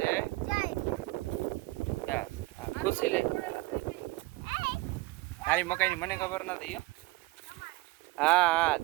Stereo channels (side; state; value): left; quieter; 21.4 dB